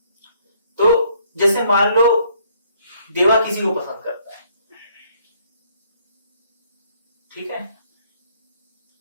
तो जैसे मान लो देवा किसी को पसंद करता है, ठीक है,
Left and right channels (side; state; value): both; inverted; correlation -0.65